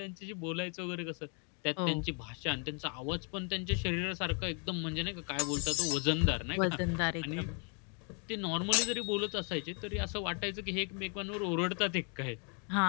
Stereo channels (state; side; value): quieter; right; 38.4 dB